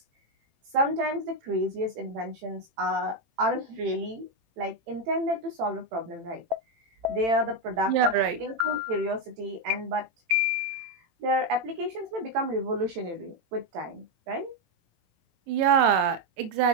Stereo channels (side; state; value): left; late; 18 ms